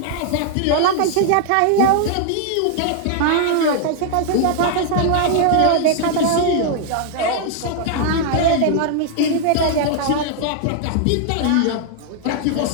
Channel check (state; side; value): different; both; correlation 0.00